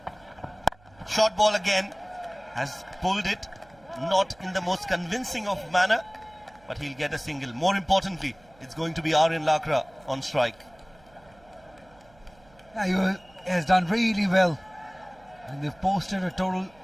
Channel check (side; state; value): right; noise; hum, 28 dB below the sound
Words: Short ball again, has pulled it, not in the most convincing of manner, but he'll get a single. More importantly, it's going to be Aryan Lakra on strike. Yeah, he has done really well. And they've posted a total